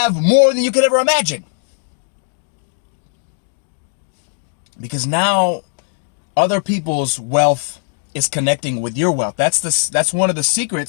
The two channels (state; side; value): silent; right; digital silence